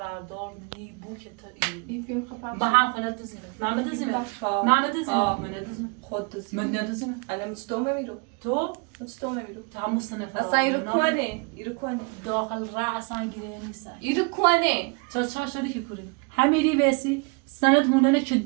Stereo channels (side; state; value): left; quieter; 32.5 dB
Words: نی بود که تو این فیلم خب با هم خونه دوزیمه من بدوزیمه آه. من بدوزیمه آه. من ندوزیمه خود دوزی من ندوزیمه الان مستوم نمیرو تو مستوم نمیرو همون سنه اصلا ایرو کنه داخل را اصلا گیره نیست ایرو کنه چرا شدی که کوری همیری وسی سند هوننه که